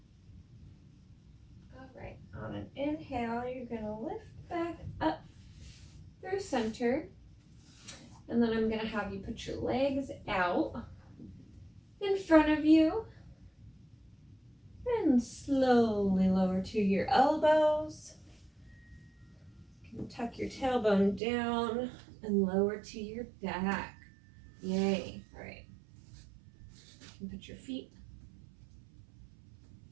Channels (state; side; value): drops out; left; at 21.2 s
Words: All right, on an inhale, you're gonna lift back up through center. And then I'm going to have you put your legs out in front of you and slowly lower to your elbows. You can tuck your tailbone down and lower to your back. Yay. All right. You can put your feet